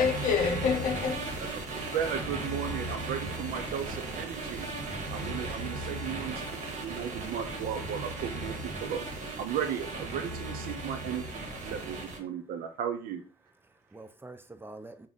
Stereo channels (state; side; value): normal; both; correlation 0.30